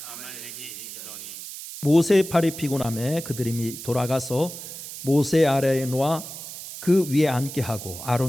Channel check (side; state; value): right; noise; hiss, 11 dB below the sound